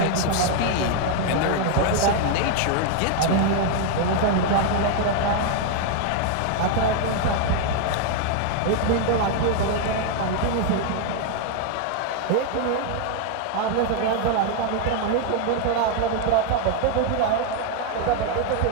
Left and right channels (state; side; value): different; both; correlation 0.00